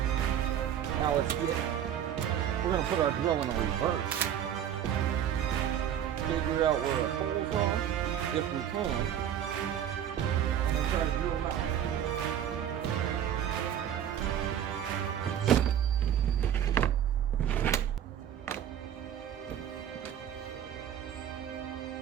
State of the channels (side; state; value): left; quieter; 9.9 dB